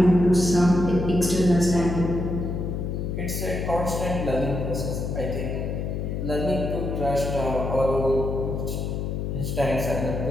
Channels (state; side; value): noise; left; hum, 3 dB below the sound